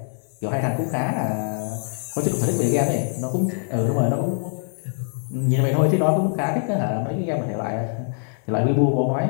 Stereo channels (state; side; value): silent; right; digital silence